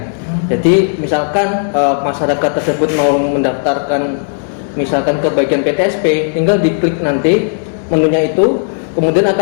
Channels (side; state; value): right; silent; digital silence